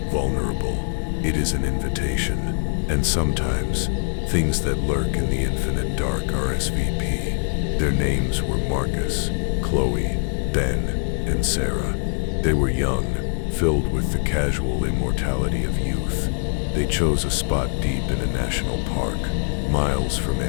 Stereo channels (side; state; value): right; silent; digital silence